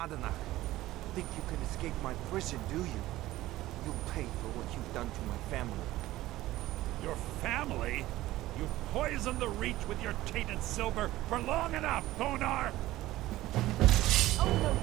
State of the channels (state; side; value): quieter; left; 16.3 dB